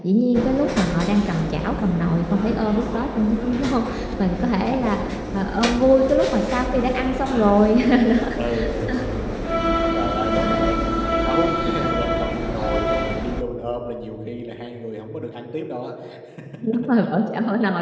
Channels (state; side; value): identical; both; correlation 1.00